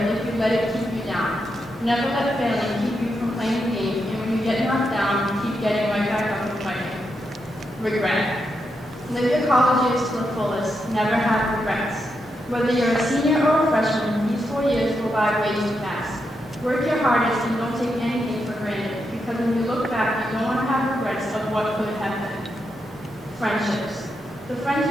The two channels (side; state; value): both; normal; correlation 0.84